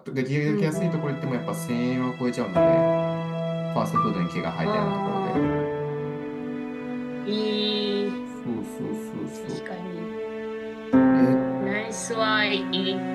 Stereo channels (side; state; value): both; identical; correlation 1.00